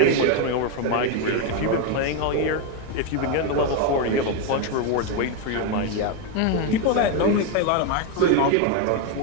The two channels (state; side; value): different; both; correlation 0.02